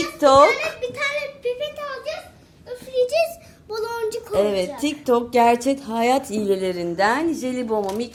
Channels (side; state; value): both; identical; correlation 1.00